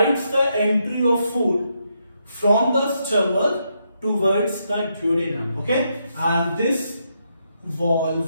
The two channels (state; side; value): inverted; both; correlation -0.80